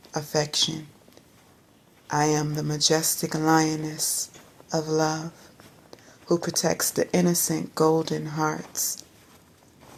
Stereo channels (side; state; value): both; identical; correlation 1.00